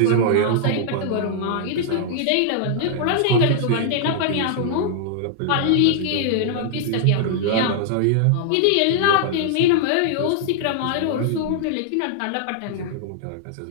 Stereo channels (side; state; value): both; different; correlation -0.01